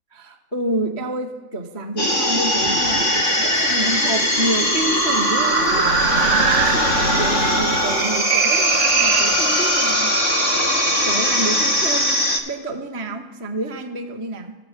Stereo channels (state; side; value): late; right; 3.5 ms